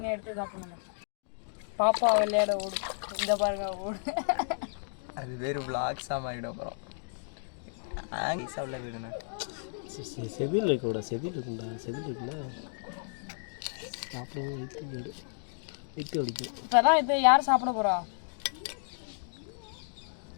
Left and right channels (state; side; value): silent; right; digital silence